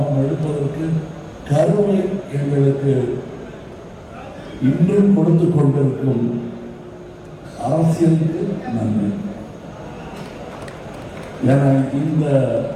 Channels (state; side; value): identical; both; correlation 1.00